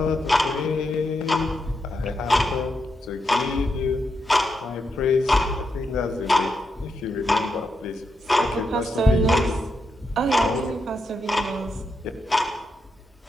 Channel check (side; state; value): both; normal; correlation 0.84